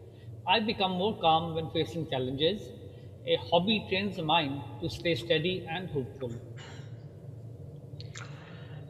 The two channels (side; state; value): both; identical; correlation 1.00